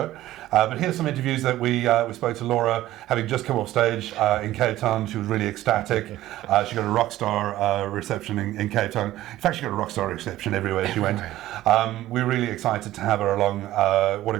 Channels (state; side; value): quieter; left; 14.9 dB